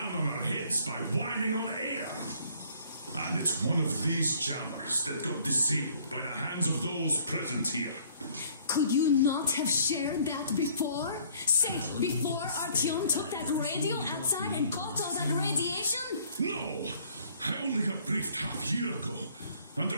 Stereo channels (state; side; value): inverted; both; correlation -0.59